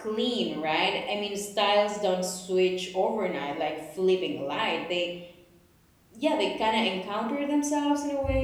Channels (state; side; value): identical; both; correlation 1.00